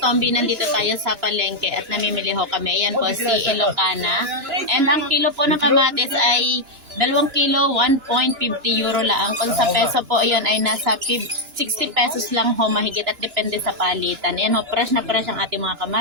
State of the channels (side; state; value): left; late; 2.9 ms